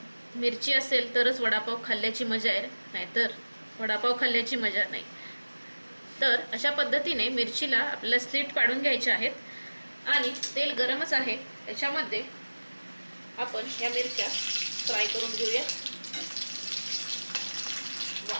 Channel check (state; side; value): inverted; both; correlation -1.00